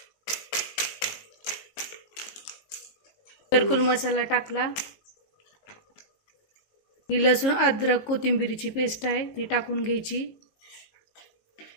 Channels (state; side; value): late; right; 19 ms